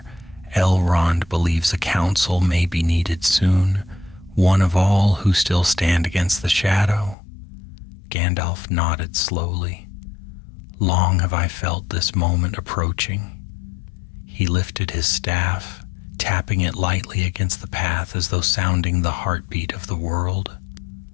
Elrond believes a council may be needed soon, one of all who still stand against the shadow." Gandalf nodded slowly. "Long have I felt this moment approaching." He lifted his staff, tapping it lightly against the path as though sounding the heartbeat of the world.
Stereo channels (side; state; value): right; drops out; at 7.2 s